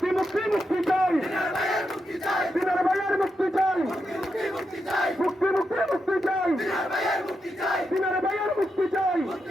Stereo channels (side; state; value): both; normal; correlation 0.85